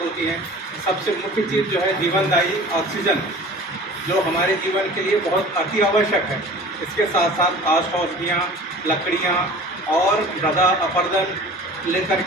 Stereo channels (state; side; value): normal; both; correlation 0.42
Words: होती हैं। सबसे मुख्य चीज़ जो है जीवनदायी ऑक्सीजन, जो हमारे जीवन के लिए बहुत अति आवश्यक है। इसके साथ साथ औषधियाँ, लकड़ियाँ और मृदा अपरदन लेकर